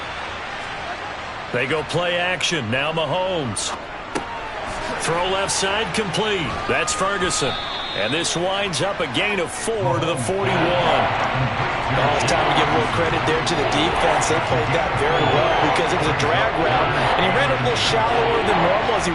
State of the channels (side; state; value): both; identical; correlation 1.00